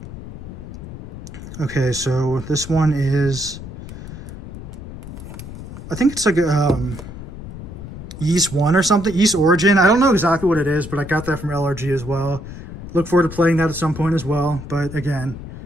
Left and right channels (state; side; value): noise; left; rumble, 12 dB below the sound